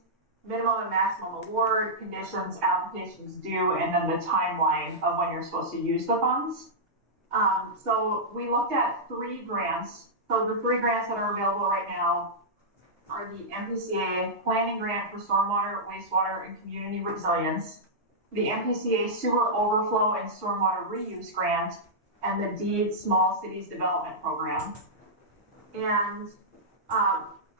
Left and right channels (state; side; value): normal; both; correlation -0.10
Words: minimum and maximum award, conditions, applications due, and then the timeline of when you're supposed to use the funds. So we looked at 3 grants. So the 3 grants that are available right now are the MPCA Planning Grant for Stormwater, Wastewater, and Community Resilience, the MPCA Sewer Overflow and Stormwater Reuse Grant, and the DEED Small Cities Development Program. And